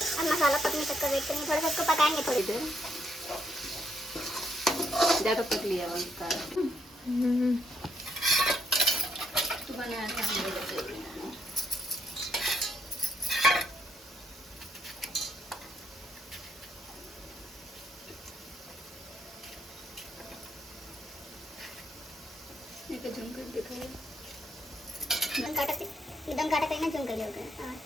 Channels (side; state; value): both; normal; correlation 0.75